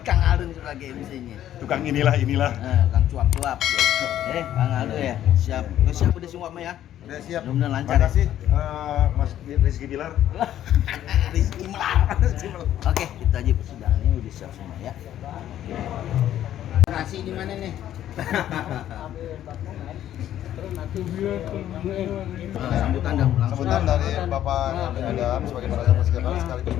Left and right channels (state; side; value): quieter; right; 11.7 dB